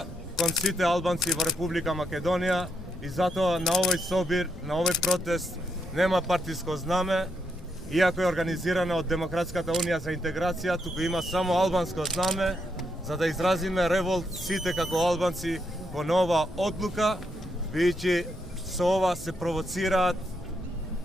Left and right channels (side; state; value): both; normal; correlation 0.79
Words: кон сите албанци во Република Македонија и затоа на овој собир, на овој протест нема партиско знаме, иако е организирана од Демократската унија за интеграција, туку има само албанско знаме, за да изразиме револт сите како албанци кон ова одлука, бидејќи со ова се провоцираат